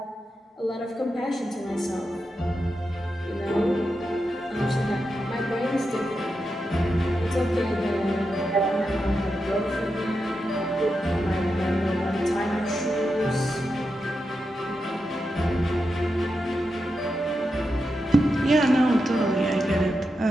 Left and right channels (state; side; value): normal; both; correlation 0.88